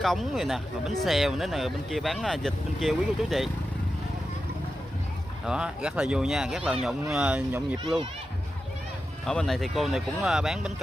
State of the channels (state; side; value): normal; both; correlation 0.91